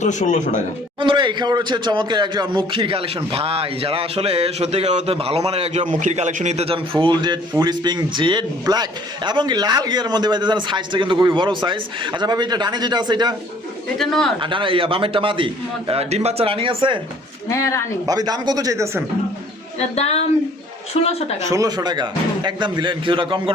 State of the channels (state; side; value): normal; both; correlation 0.56